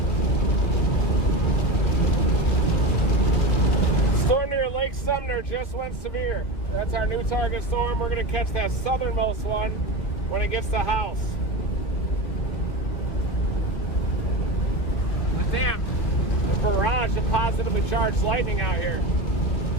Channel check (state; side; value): late; right; 2.9 ms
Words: Storm near Lake Sumner just went severe. That's our new target storm. We're going to catch that southernmost one when it gets to House. But damn, a barrage of positively charged lightning out here.